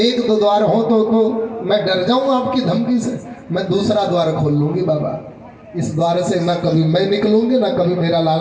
द्वार हो तो मैं डर जाऊं आपकी धमकी से, मैं दूसरा द्वार खोल लूंगी बाबा। इस द्वार से ना कभी मैं निकलूंगी ना कभी मेरा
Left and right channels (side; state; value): both; identical; correlation 1.00